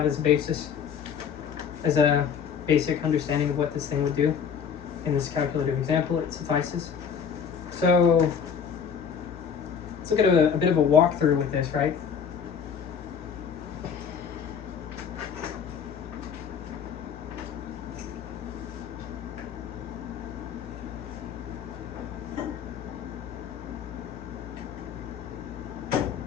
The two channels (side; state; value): right; quieter; 7.1 dB